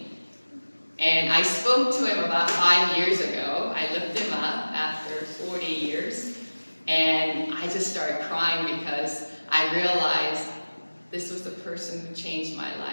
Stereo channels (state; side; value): inverted; both; correlation -1.00